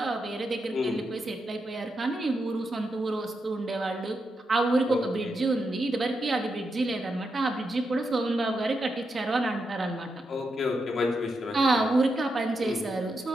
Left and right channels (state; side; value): normal; both; correlation 0.84